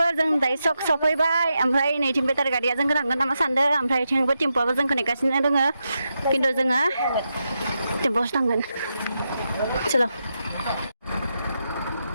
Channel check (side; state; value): both; inverted; correlation -0.86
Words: जों दायो सफैबाय ओमफ्राय नैथिं बेटारि गारिया जोंखौ थांगोन नामा सानदों ओमफ्राय थिंबो टेम्प'आबो जोंखौ नेगासिनो दोङो खिन्थु जोङो टेम्प'आवसो थांगोन चलो